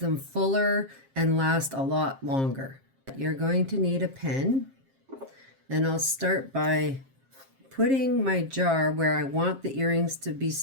fuller and last a lot longer. You're going to need a pen, and I'll start by putting my jar where I want the earrings to be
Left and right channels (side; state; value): left; late; 7.5 ms